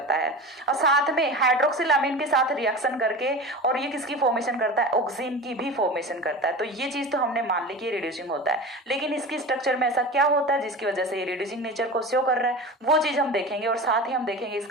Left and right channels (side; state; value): both; normal; correlation 0.31